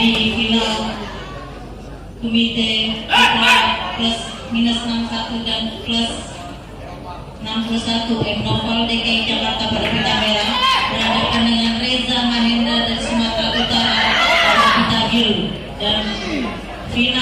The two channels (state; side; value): identical; both; correlation 1.00